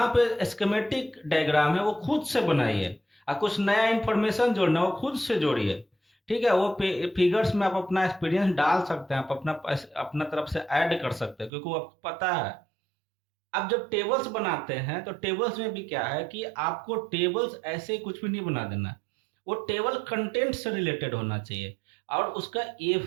पे स्कीमेटिक डायग्राम है वो खुद से बनाइए और कुछ नया इन्फॉर्मेशन जोड़ना वो खुद से जोड़िए, ठीक है। वो फिगर्स में आप अपना एक्सपीरियंस डाल सकते हैं, आप अपना तरफ से ऐड कर सकते हैं, क्योंकि वो आपको पता है। अब जब टेबल्स बनाते हैं तो टेबल्स में भी क्या है कि आपको टेबल्स ऐसे कुछ भी नहीं बना देना। वो टेबल कंटेंट से रिलेटेड होना चाहिए और उसका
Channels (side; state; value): left; drops out; at 11.5 s